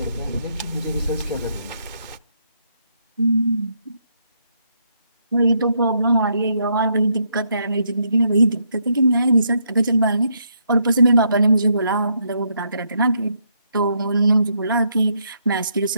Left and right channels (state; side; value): inverted; both; correlation -0.76